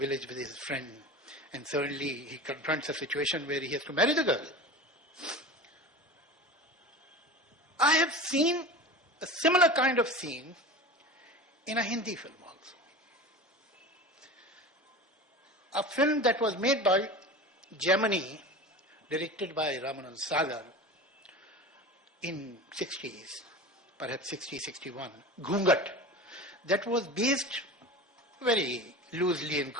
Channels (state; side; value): normal; both; correlation 0.31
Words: with his friend, and suddenly he confronts a situation where he has to marry the girl. I have seen a similar kind of scene in a Hindi film also. A film that was made by Germany, directed by Ramanand Sagar in 60s, perhaps 60, 61, Ghungat, that was based very loosely and